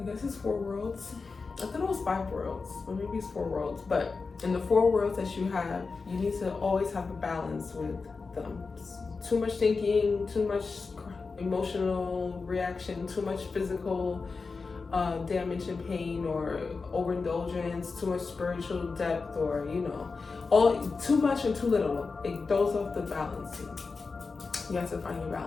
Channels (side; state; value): right; quieter; 4.4 dB